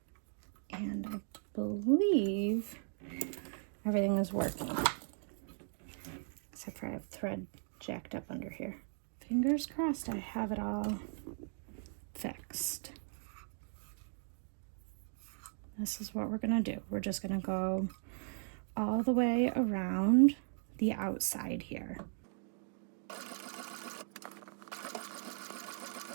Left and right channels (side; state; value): left; silent; 52 dB below the other